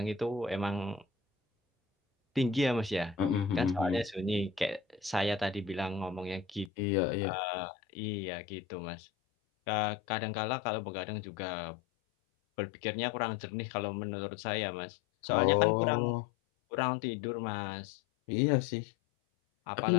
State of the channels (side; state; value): right; drops out; at 6.7 s